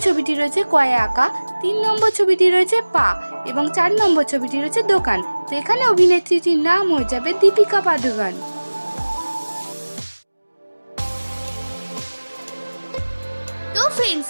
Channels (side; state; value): both; inverted; correlation -1.00